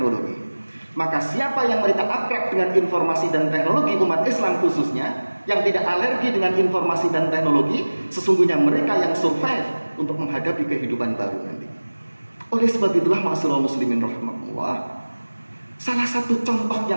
Maka siapa yang mereka akrab dengan informasi dan teknologi, umat Islam khususnya, yang tidak alergi dengan informasi dan teknologi, sesungguhnya mereka yang survive untuk menghadapi kehidupan baru nanti. Oleh sebab itulah ma'asyiral muslimin rahimahullah, salah satu contoh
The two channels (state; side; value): inverted; both; correlation -1.00